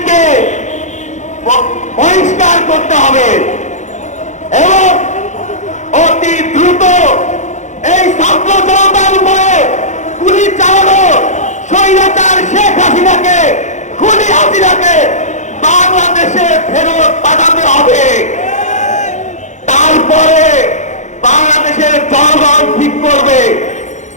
বহিষ্কার করতে হবে এবং অতি দ্রুত এই ছাত্র জনতার উপরে গুলি চালানো স্বৈরাচার শেখ হাসিনাকে, খুনি হাসিনাকে বাংলাদেশে ফেরত পাঠাতে হবে। তারপরে বাংলাদেশের জনগণ ঠিক করবে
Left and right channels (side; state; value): right; late; 0.35 ms